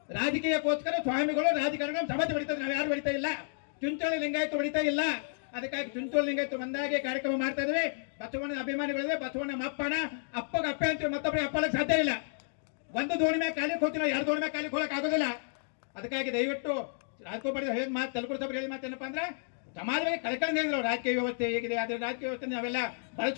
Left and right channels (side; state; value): right; silent; digital silence